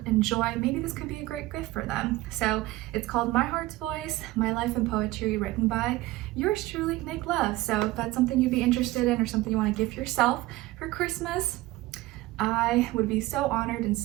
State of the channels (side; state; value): left; quieter; 18.3 dB